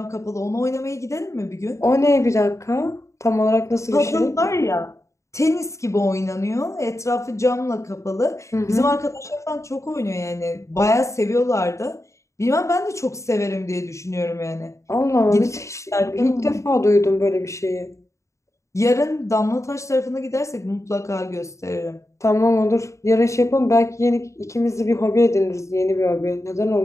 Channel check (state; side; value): late; right; 0.14 ms